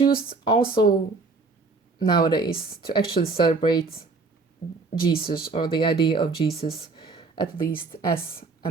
also nowadays to actually celebrate Jesus, or the idea of Jesus, at least as a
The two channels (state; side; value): quieter; left; 4.0 dB